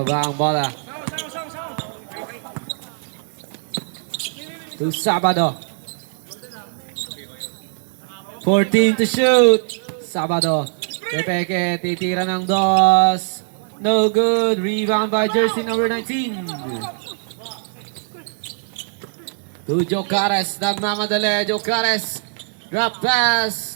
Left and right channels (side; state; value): left; silent; digital silence